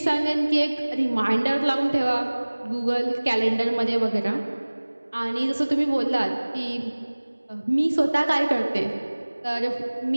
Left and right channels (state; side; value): inverted; both; correlation -1.00